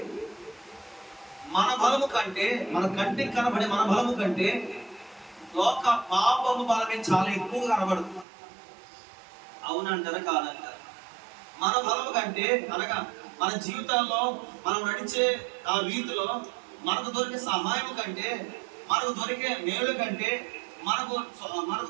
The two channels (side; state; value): left; drops out; at 8.2 s